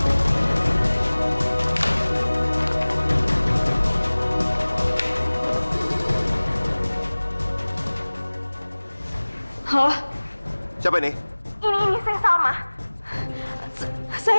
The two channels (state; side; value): inverted; both; correlation -1.00